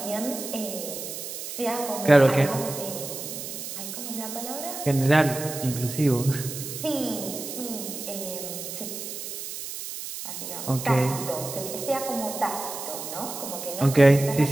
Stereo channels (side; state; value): right; noise; hiss, 8 dB below the sound